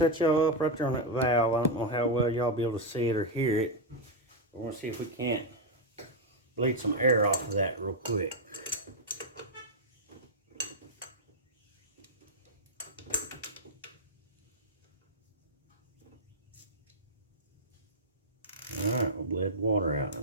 y'all up right there on that valve. I don't know how well y'all be able to see it or hear it. We're going to see if we can't bleed some air off of that real quick. Alright, we bled water out.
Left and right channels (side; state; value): both; normal; correlation 0.01